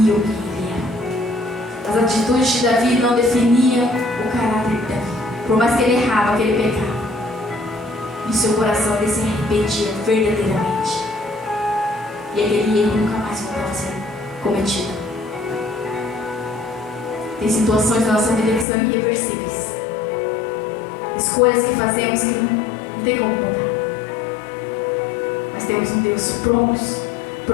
quem ele era. As atitudes de Davi não definiam o caráter de Davi. Por mais que ele errava, que ele pecava, em seu coração ele se arrependia verdadeiramente. E aquele erro nunca mais voltava a ser cometido. Tem situações da nossa vida que são irreversíveis. Escolhas que fazemos que não tem como mudar. Mas temos um Deus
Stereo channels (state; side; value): drops out; right; at 18.7 s